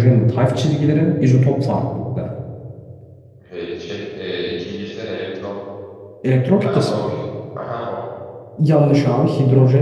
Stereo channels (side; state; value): both; identical; correlation 1.00